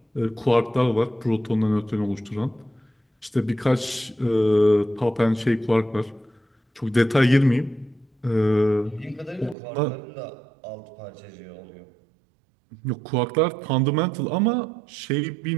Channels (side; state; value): left; drops out; at 9.6 s